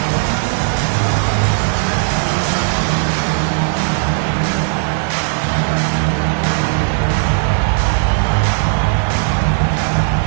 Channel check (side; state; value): left; silent; 56 dB below the other